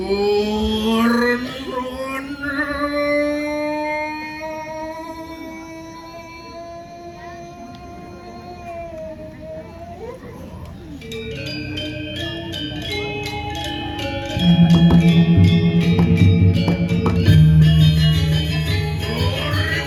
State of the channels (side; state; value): both; identical; correlation 1.00